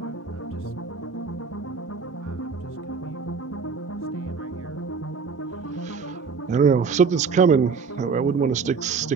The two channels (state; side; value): quieter; left; 5.3 dB